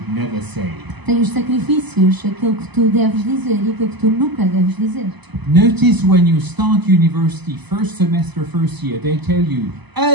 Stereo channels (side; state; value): left; late; 0.99 ms